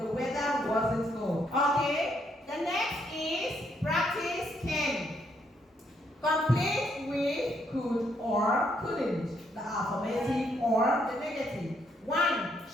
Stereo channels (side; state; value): both; normal; correlation 0.73